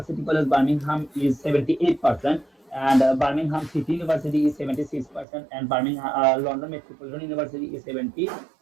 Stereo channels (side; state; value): left; drops out; at 5.2 s